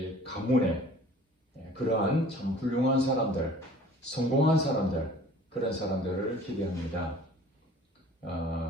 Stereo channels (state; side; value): normal; both; correlation 0.48